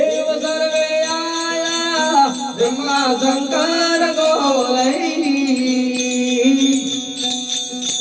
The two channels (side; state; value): both; identical; correlation 1.00